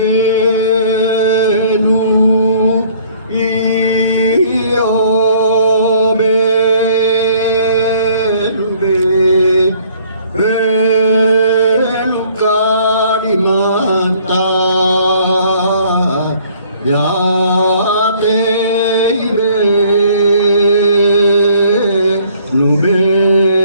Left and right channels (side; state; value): both; inverted; correlation -0.59